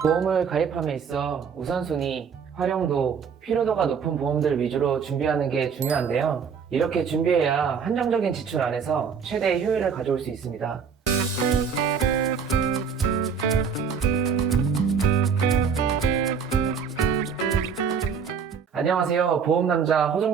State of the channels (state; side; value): quieter; left; 6.5 dB